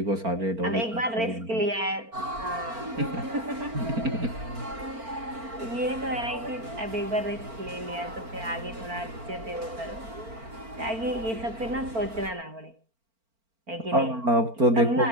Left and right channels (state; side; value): late; left; 4.4 ms